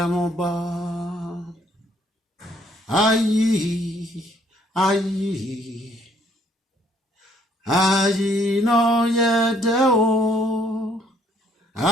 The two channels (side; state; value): both; normal; correlation 0.65